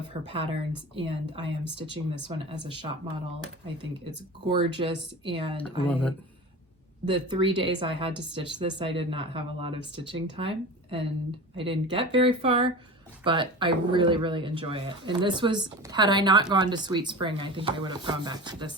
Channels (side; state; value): both; normal; correlation 0.32